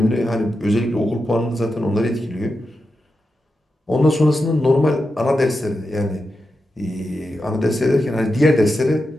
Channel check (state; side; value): normal; both; correlation 0.89